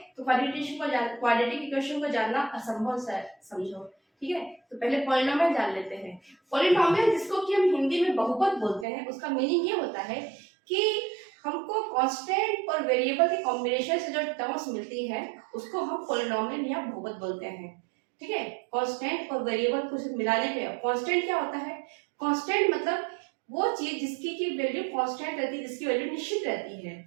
तो क्वाड्रेटिक इक्वेशन को जानना असंभव समझो। ठीक है, तो पहले पॉलिनोमियल जान लेते हैं। पॉलिनोमियल, जिसको कि हम हिंदी में बहुपद बोलते हैं, उसका मीनिंग ये होता है कि हमको कांस्टेंट और वेरिएबल के कॉम्बिनेशन से जो टर्म्स मिलती है उसको हम पॉलिनोमियल या बहुपद बोलते हैं। ठीक है, कांस्टेंट और वेरिएबल को मिलाने पे कांस्टेंट क्या होता है? कांस्टेंट मतलब वो चीज जिसकी की वैल्यू कांस्टेंट रहती है, जिसकी वैल्यू निश्चित रहती है।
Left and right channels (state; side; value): drops out; left; at 8.8 s